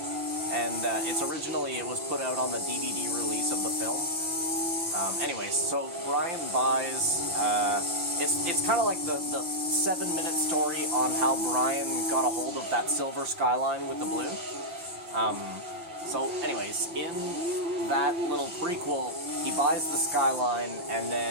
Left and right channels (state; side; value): late; left; 5.8 ms